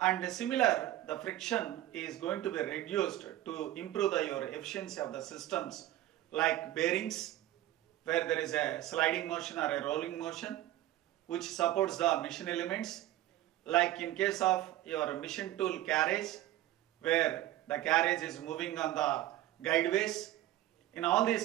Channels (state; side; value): quieter; left; 14.5 dB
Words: and similar, the friction is going to be reduced to improve your efficiency of the systems like bearings, where there is a sliding motion or a rolling motion, which supports the machine elements, like in case of your machine tool carriage, where the carriage is moving on the guideways. In all these